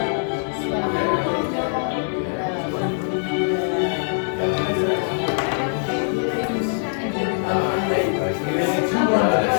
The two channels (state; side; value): silent; right; 64 dB below the other